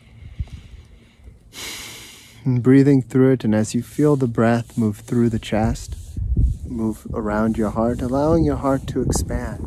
And breathing through it, and as you feel the breath move through the chest, move around your heart, allowing your heart to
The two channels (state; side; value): identical; both; correlation 1.00